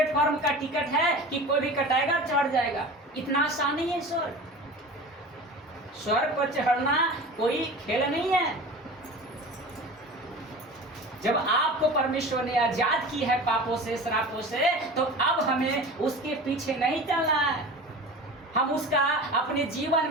का टिकट है कि कोई भी कटाएगा चढ़ जाएगा। इतना आसान नहीं है स्वर्ग। स्वर्ग पर चढ़ना कोई खेल नहीं है। जब आपको परमेश्वर ने आजाद की है पापों से, श्रापों से, तो अब हमें उसके पीछे नहीं चलना है, हम उसका अपने जीवन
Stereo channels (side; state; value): both; normal; correlation 0.35